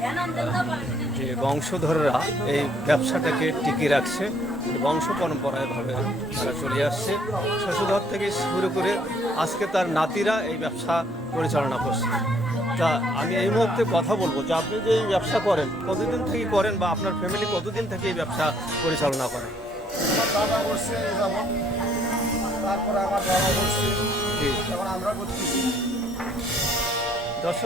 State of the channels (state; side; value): normal; both; correlation 0.64